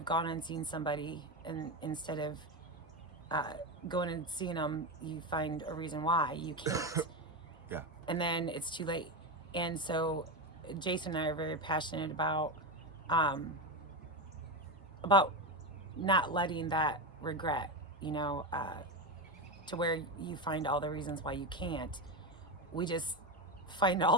gone and seen somebody, and instead of going and seeing them, you find a reason why you can't. Yeah. And then it's too late. And so Jason and I are very passionate about not letting that regret, to where you find all the reasons why you can't. We just find all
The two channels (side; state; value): both; normal; correlation 0.14